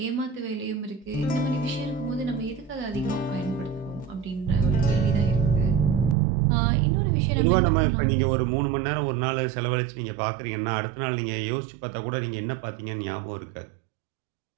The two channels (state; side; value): drops out; left; at 6.2 s